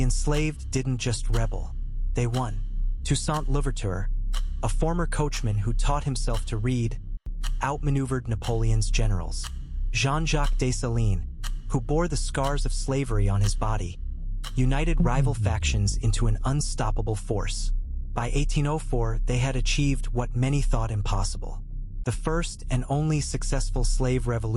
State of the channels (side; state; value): both; identical; correlation 1.00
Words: enslaved didn't just rebel, they won. Toussaint Louverture, a former coachman who taught himself to read, outmaneuvered Napoleon's generals. Jean-Jacques Dessalines, who bore the scars of slavery on his body, united rival factions into an unstoppable force. By 1804, they had achieved what many thought impossible. The first and only successful slave